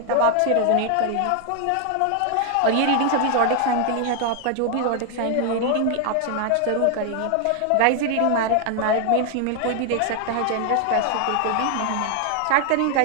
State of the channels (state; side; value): different; both; correlation 0.00